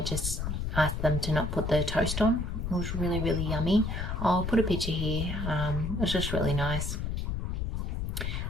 just asked them to not put the toast on. It was really, really yummy. I'll put a picture here. It was just really nice.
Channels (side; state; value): left; noise; rumble, 2 dB below the sound